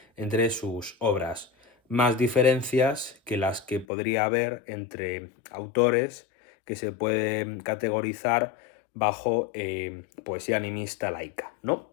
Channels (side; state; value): right; drops out; at 3.9 s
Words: entre sus obras, más diferencias que las que podría haber entre autores que se pueden categorizar bajo poesía animista laica, ¿no?